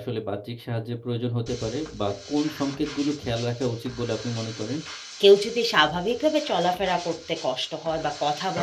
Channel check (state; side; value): identical; both; correlation 1.00